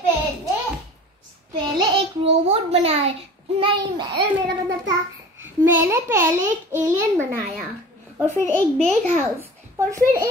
पहले एक रोबोट बनाया। नहीं, मेरा मतलब था मैंने पहले एक एलियन बनाया और फिर एक बिग हाउस और फिर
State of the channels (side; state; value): both; normal; correlation 0.40